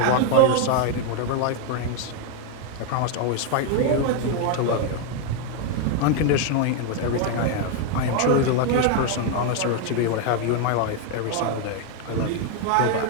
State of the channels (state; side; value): different; both; correlation 0.01